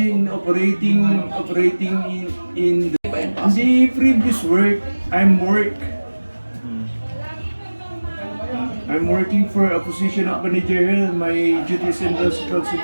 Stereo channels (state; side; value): inverted; both; correlation -1.00